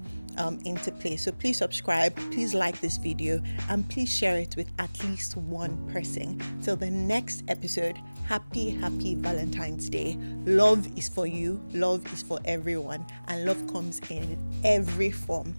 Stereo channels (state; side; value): inverted; both; correlation -1.00